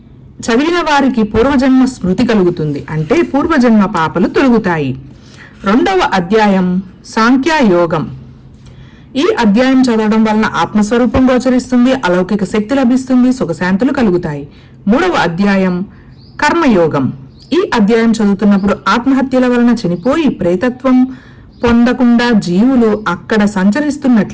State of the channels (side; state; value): both; identical; correlation 1.00